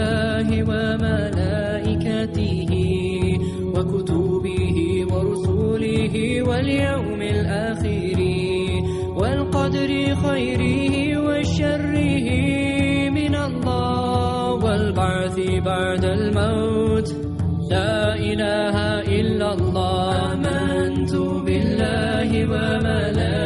وملائكته وكتبه ورسله واليوم الآخر والقدر خيره وشره من الله والبعث بعد الموت لا إله إلا الله. آمنت بالله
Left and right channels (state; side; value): identical; both; correlation 1.00